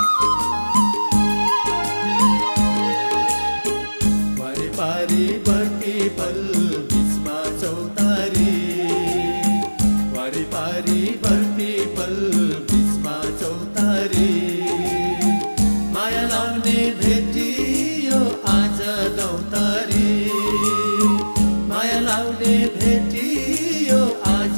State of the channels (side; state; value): both; inverted; correlation -1.00